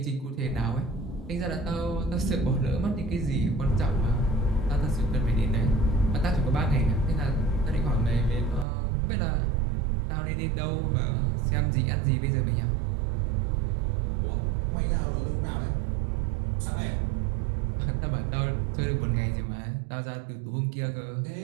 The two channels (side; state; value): left; drops out; at 8.7 s